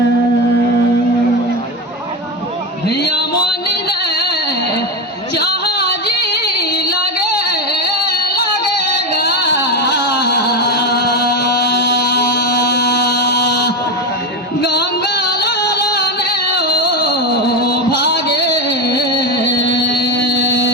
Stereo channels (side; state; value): both; normal; correlation 0.16